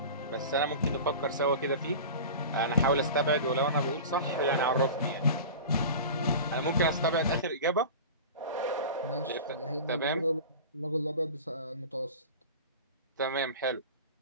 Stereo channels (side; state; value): both; inverted; correlation -0.34